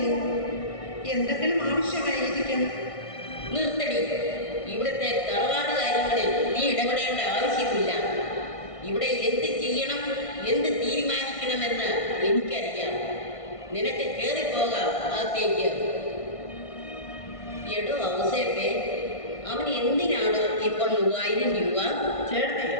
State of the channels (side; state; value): right; late; 1.6 ms